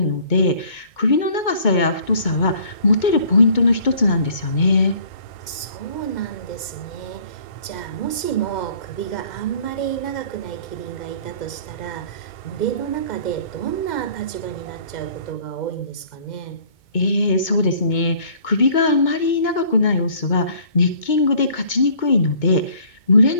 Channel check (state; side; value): late; right; 2.2 ms